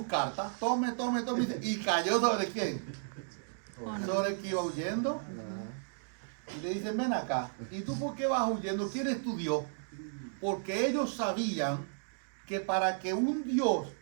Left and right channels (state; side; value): silent; left; digital silence